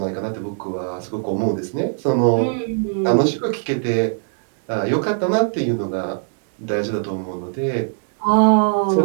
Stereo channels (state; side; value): silent; left; digital silence